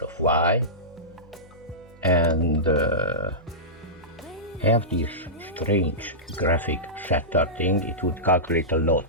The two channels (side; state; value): both; normal; correlation -0.16